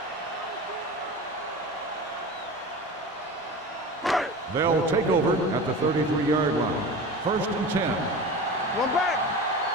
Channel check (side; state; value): both; normal; correlation 0.32